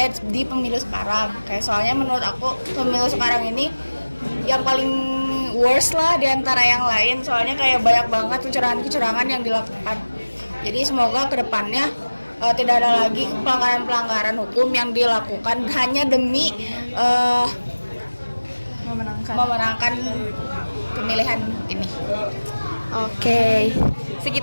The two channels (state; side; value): inverted; both; correlation -1.00